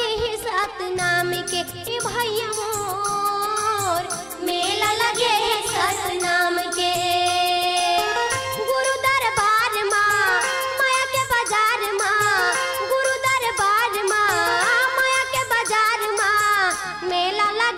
है सात नाम के ए भैया मोर मेला लगे है सात नाम के गुरु दरबार माँ माया के बाजार माँ गुरु दरबार माँ माया के बाजार माँ मेला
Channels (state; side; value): noise; right; hum, 29 dB below the sound